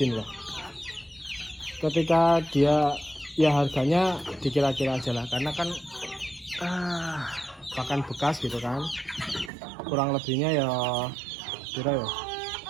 lah, ketika dia ya harganya dikira-kira aja lah, karena kan pakan bekas gitu kan, kurang lebihnya ya kira ya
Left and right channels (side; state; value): left; drops out; at 9.5 s